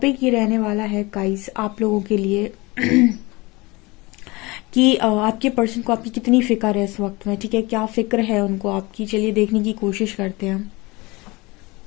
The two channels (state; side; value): quieter; right; 23.9 dB